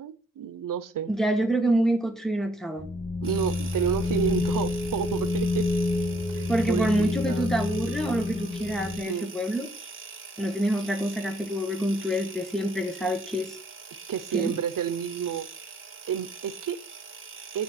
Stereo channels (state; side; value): normal; both; correlation 0.64